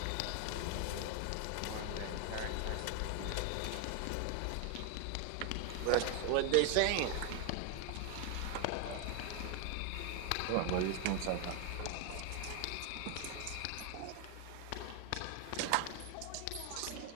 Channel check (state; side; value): different; both; correlation 0.00